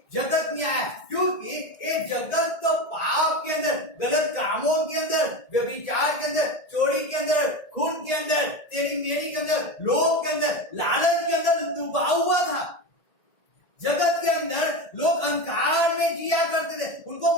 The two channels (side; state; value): right; late; 1.7 ms